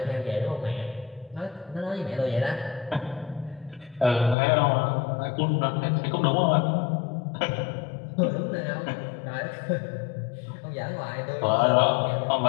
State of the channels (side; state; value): right; drops out; at 4.4 s